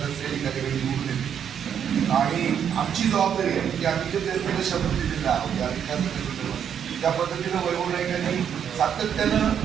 त्या ठिकाणी निवडून येतील. आणि आमची जबाबदारी आहे की आम्ही जे त्यांना शपथ दिलेला आहोत या विकासाच्या त्या पद्धतीनं वैभव नाईकांनी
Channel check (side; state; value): left; quieter; 8.4 dB